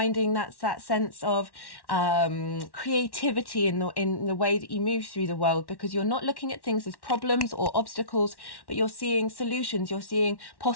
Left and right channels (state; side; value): late; right; 1.1 ms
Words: that sense of creativity in the way that you move through the world, because you're not looking at things as problems or obstacles, but you're seeing solutions, you're seeing